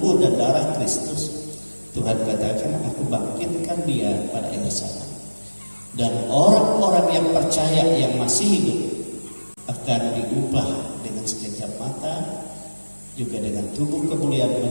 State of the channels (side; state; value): both; inverted; correlation -1.00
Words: dan darah Kristus, Tuhan katakan, aku bangkitkan dia pada akhir zaman. Dan orang-orang yang percaya yang masih hidup akan diubah dengan sekejap mata, juga dengan tubuh kemuliaan